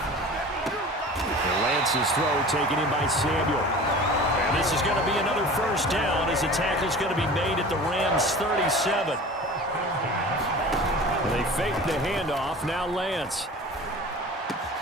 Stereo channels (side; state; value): both; normal; correlation 0.39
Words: And Lance's throw taken in by Samuel. And this is going to be another 1st down as the tackle's going to be made at the Rams' 37. And they fake the handoff. Now Lance.